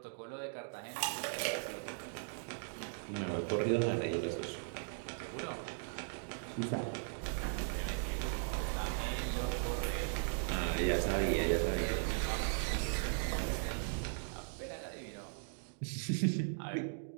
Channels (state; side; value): silent; left; digital silence